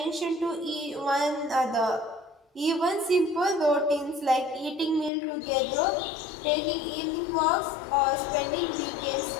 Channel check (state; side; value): drops out; right; at 5.1 s